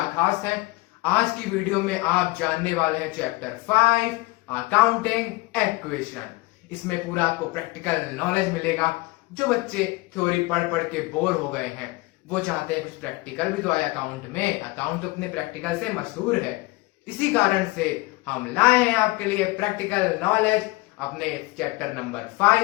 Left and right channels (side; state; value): right; quieter; 22.3 dB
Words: खास है? आज की वीडियो में आप जानने वाले हैं चैप्टर 5 अकाउंटिंग इक्वेशन। इसमें पूरा आपको प्रैक्टिकल नॉलेज मिलेगा। जो बच्चे थ्योरी पढ़ पढ़ के बोर हो गए हैं, वो चाहते हैं कुछ प्रैक्टिकल भी तो आए अकाउंट में। अकाउंट तो अपने प्रैक्टिकल से मशहूर है, इसी कारण से हम लाए हैं आपके लिए प्रैक्टिकल नॉलेज अपने चैप्टर नंबर